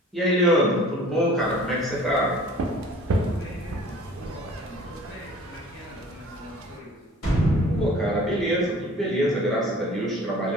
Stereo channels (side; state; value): both; normal; correlation 0.48